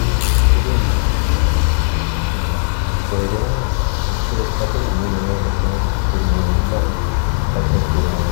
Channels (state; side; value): silent; right; 68 dB below the other